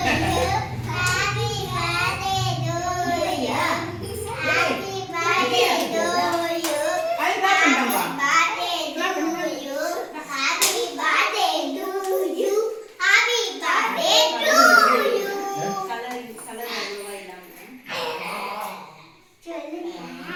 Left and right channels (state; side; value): identical; both; correlation 1.00